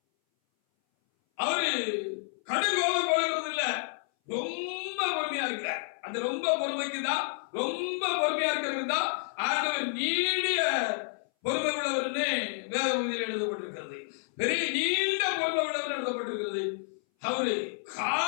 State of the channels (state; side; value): silent; right; 58 dB below the other